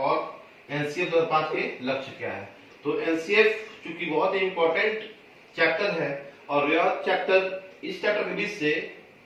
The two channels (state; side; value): identical; both; correlation 1.00